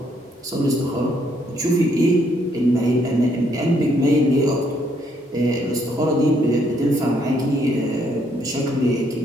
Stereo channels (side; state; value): both; normal; correlation 0.71